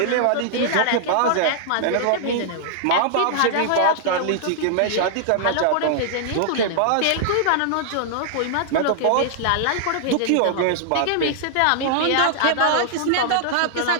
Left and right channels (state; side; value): different; both; correlation -0.01